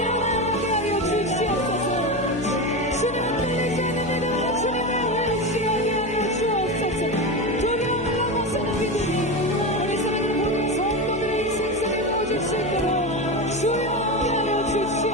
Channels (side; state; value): left; noise; hum, 16 dB below the sound